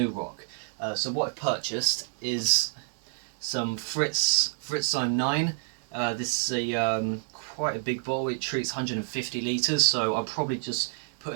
rock. So what I've purchased is some Fritzzyme 9. This is quite a big bottle. It treats 150 litres, so I'll probably just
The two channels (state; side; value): silent; left; digital silence